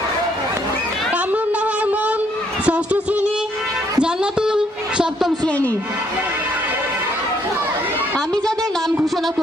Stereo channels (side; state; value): both; normal; correlation 0.69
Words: কামরুন নাহার মন 6ষ্ঠ শ্রেণী, জান্নাতুল 7ম শ্রেণী। আমি যাদের নাম ঘোষণা